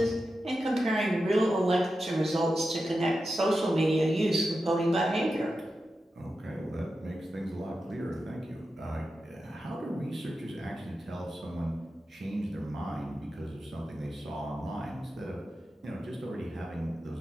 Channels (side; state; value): both; normal; correlation 0.90